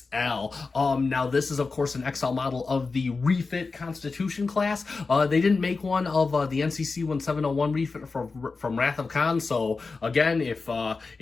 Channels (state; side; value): quieter; right; 4.2 dB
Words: Now this is of course an XL model of the refit Constitution class. They didn't make one of the NCC-1701 refit from Wrath of Khan, so again, if